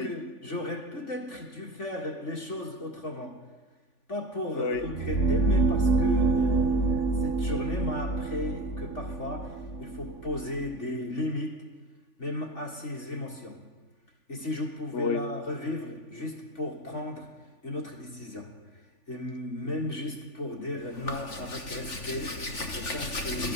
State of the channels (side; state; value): right; late; 3.5 ms